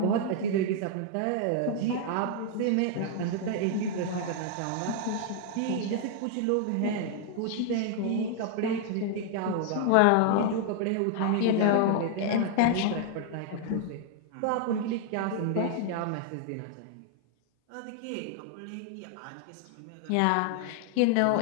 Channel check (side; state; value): both; different; correlation 0.00